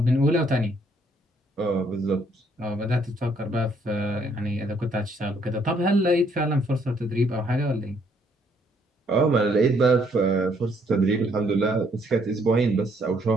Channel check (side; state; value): both; normal; correlation 0.68